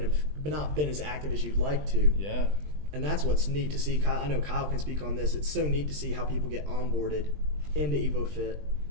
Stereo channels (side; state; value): left; late; 20 ms